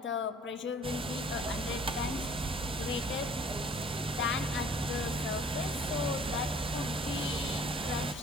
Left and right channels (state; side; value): normal; both; correlation 0.54